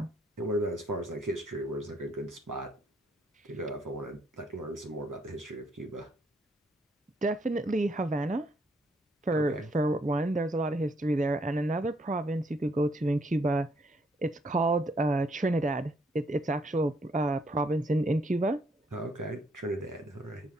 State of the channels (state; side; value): normal; both; correlation 0.71